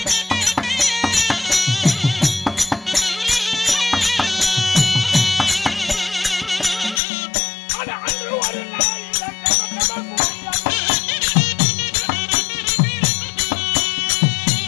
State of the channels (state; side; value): drops out; right; at 7.0 s